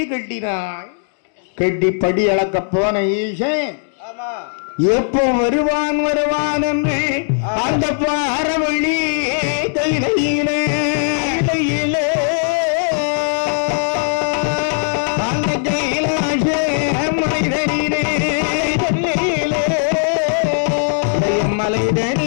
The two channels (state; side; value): silent; right; digital silence